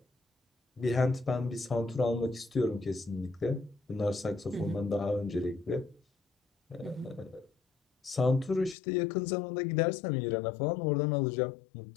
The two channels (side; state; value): right; drops out; at 8.8 s